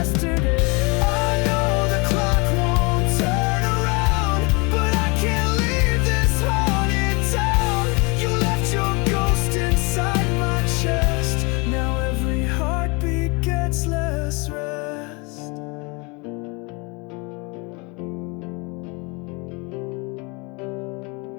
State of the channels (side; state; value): right; quieter; 29.4 dB